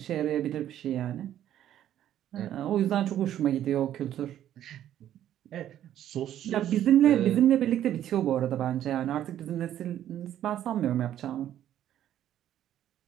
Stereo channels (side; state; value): left; quieter; 11.5 dB